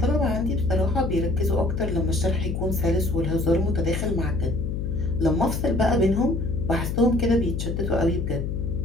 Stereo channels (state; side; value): noise; left; hum, 2 dB below the sound